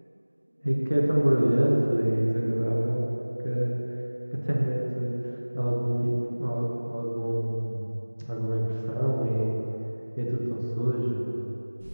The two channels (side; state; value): both; inverted; correlation -1.00